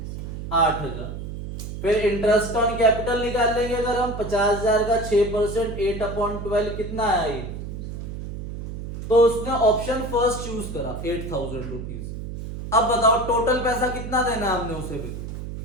8,000। फिर इंटरेस्ट ऑन कैपिटल निकाल लेंगे अगर हम 50,000 का 6% 8/12 कितना आया ये? तो उसने ऑप्शन फर्स्ट चूज करा 8,000 रुपीज। अब बताओ टोटल पैसा कितना देना है हमने उसे? भी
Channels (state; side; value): noise; right; hum, 8 dB below the sound